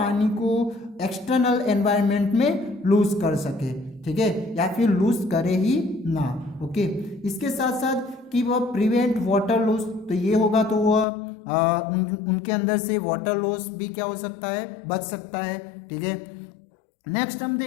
को एक्सटर्नल एनवायरनमेंट में लूज कर सके। ठीक है, या फिर लूज करे ही ना। ओके, इसके साथ साथ कि वह प्रिवेंट वाटर लॉस, तो ये होगा तो वह उनके अंदर से वाटर लॉस भी क्या हो सकता है, बच सकता है। ठीक है, नेक्स्ट हम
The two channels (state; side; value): drops out; right; at 11.1 s